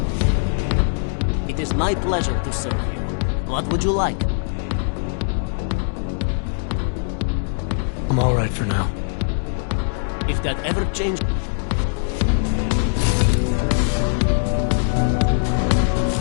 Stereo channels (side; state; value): right; silent; digital silence